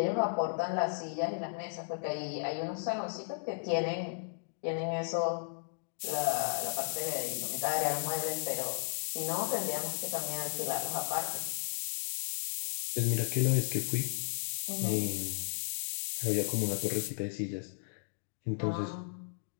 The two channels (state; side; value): silent; right; digital silence